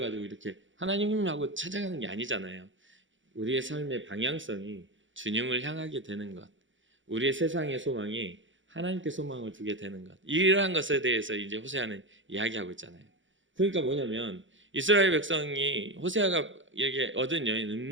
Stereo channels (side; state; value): left; late; 0.56 ms